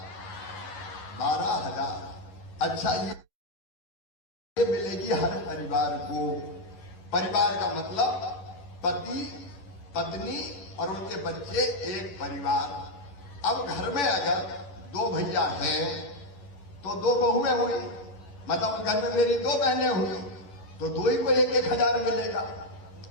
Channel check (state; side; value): late; right; 10 ms